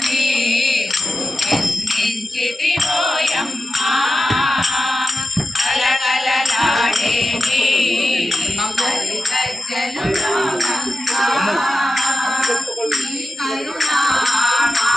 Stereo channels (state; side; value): normal; both; correlation 0.92